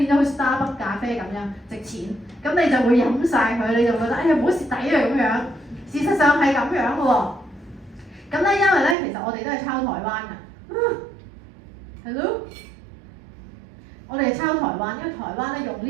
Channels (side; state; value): left; drops out; at 9.0 s